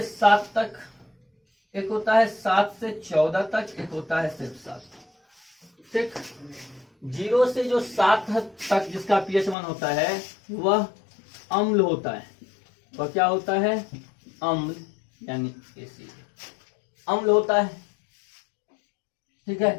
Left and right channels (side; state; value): right; drops out; at 9.6 s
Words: 7 तक, एक होता है 7 से 14 तक, एक होता है सिर्फ 7, ठीक। 0 से जो 7 तक जिसका pH मान होता है वह अम्ल होता है। वह क्या होता है, अम्ल यानी एसिड, अम्ल होता है, ठीक